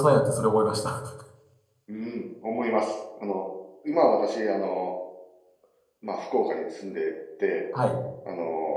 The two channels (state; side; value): identical; both; correlation 1.00